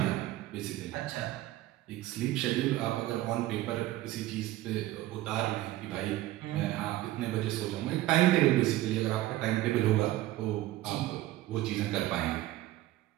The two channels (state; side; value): quieter; left; 15.7 dB